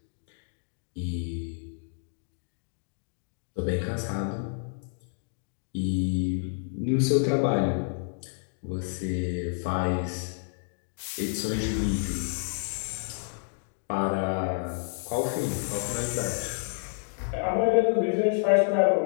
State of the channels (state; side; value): silent; right; digital silence